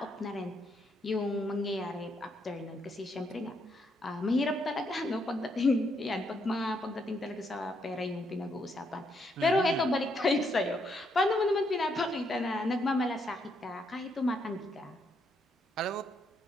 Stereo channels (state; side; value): normal; both; correlation 0.76